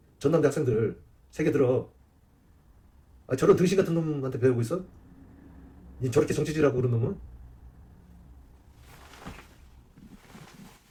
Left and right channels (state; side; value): identical; both; correlation 1.00